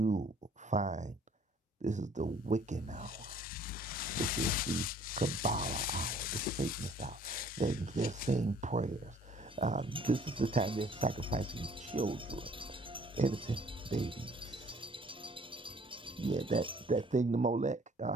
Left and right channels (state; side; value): normal; both; correlation 0.57